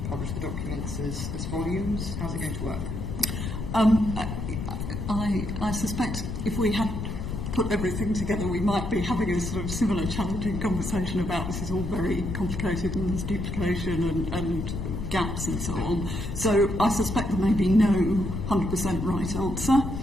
publish the documents as volumes? How's it going to work? I suspect if we had put everything together, we might be having a sort of similar challenging conversation about this is all very complicated and there's duplication and gaps and so on. So I suspect there may be no 100% right answer.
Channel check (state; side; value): noise; left; rumble, 4 dB below the sound